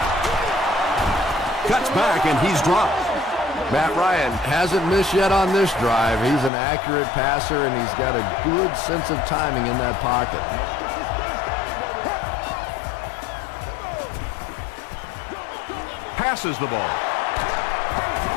Cuts back, and he's dropped. Matt Ryan hasn't missed yet on this drive. He's an accurate passer, and he's got a good sense of timing in that pocket. Passes the ball.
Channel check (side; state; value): right; drops out; at 6.5 s